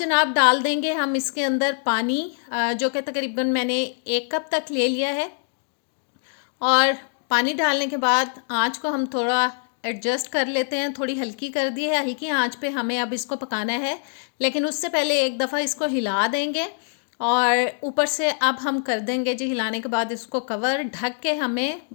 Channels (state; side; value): silent; right; 63 dB below the other